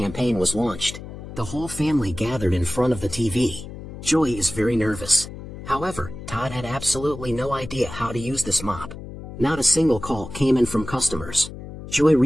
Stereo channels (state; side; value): noise; left; hum, 12 dB below the sound